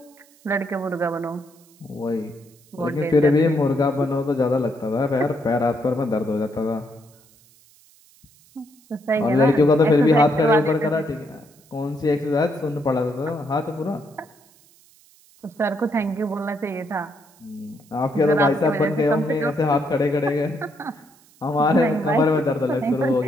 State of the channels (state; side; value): noise; right; hiss, 29 dB below the sound